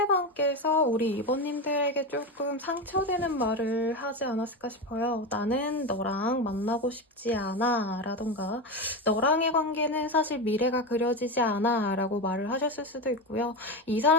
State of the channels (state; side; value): normal; both; correlation 0.17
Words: 우리 2번님들에게 조금 상처되는 말을 하지 않았을까 싶어요. 나는 너랑 만나고 싶지 않아 라던가 너랑의 관계는 사실 미래가 그려지지 않아 라고 말을 하셨을 수도 있고요. 이